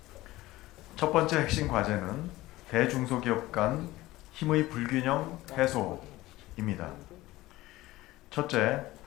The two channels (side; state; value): right; quieter; 17.9 dB